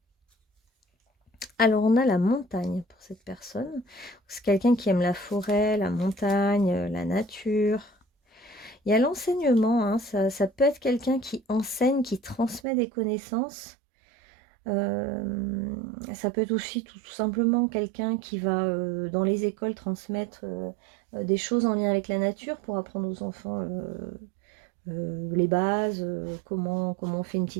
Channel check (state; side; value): drops out; left; at 12.6 s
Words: Alors on a la montagne pour cette personne. C'est quelqu'un qui aime la forêt, la montagne, la nature. Il y a l'enseignement, hein, ça peut être quelqu'un qui enseigne, qui transmet des connaissances. Ça peut être aussi tout simplement quelqu'un qui va dans les écoles transmettre des choses en lien avec la nature pour apprendre aux enfants les bases, comment on fait une